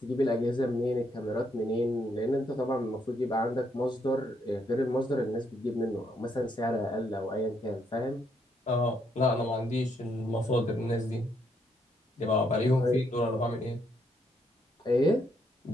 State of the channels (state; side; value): normal; both; correlation 0.74